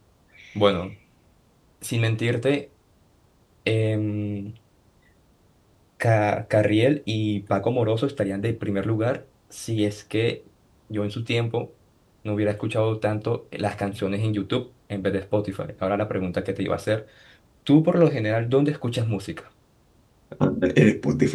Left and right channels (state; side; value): identical; both; correlation 1.00